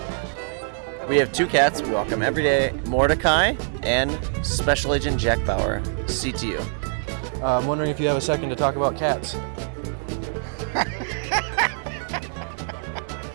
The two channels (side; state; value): left; silent; digital silence